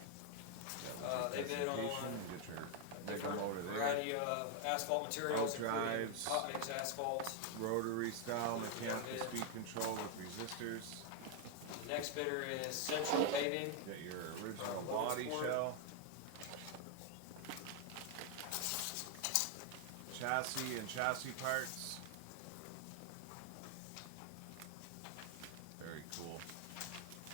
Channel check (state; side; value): different; both; correlation 0.00